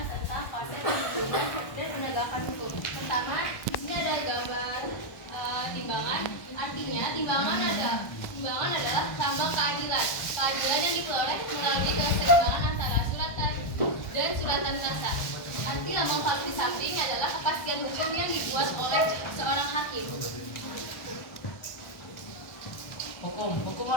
tentang konsep perlindungan dan penegakan hukum. Pertama, di sini ada gambar timbangan. Artinya timbangan adalah lambang keadilan. Keadilan yang diperoleh melalui keseimbangan antara suratan dan suratan kuasa. Arti lambang palu di samping adalah kepastian hukum yang dibuat oleh seorang hakim. Hukum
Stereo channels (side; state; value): right; late; 1.2 ms